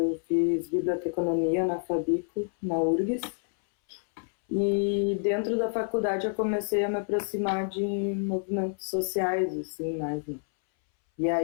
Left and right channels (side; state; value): right; silent; 59 dB below the other